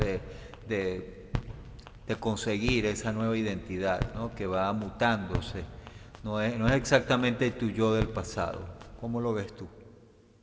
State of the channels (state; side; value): identical; both; correlation 1.00